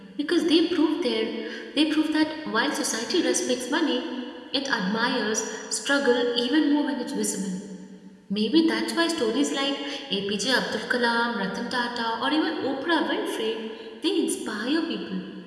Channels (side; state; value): both; identical; correlation 1.00